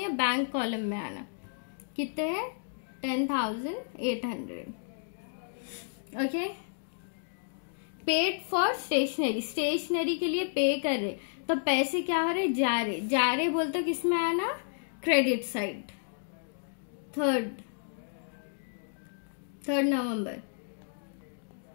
बैंक कॉलम में आना। कितने हैं, 10,800। ओके। पेड फॉर स्टेशनरी के लिए पे कर रहे, तो पैसे क्या हो रहे, जा रहे बोलते तो किस में आना, क्रेडिट साइड। 3 नवंबर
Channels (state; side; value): silent; right; digital silence